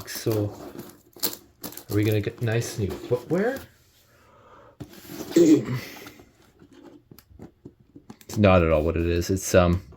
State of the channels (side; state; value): both; identical; correlation 1.00